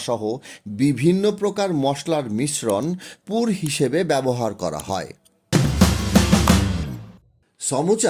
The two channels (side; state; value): both; identical; correlation 1.00